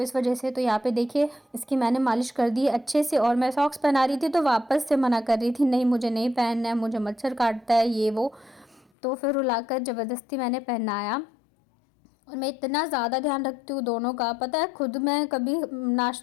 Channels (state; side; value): drops out; right; at 8.8 s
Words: वजह से। तो यहाँ पे देखिए इसकी मैंने मालिश कर दी अच्छे से। और मैं सॉक्स पहना रही थी तो वापस से मना कर रही थी, नहीं मुझे नहीं पहनना है, मुझे मच्छर काटता है ये वो। तो फिर रुलाकर ज़बरदस्ती मैंने पहनाया। और मैं इतना ज़्यादा ध्यान रखती हूँ दोनों का, पता है खुद मैं कभी